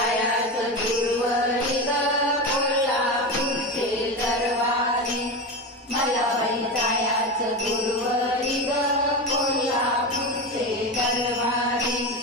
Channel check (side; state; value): both; normal; correlation 0.20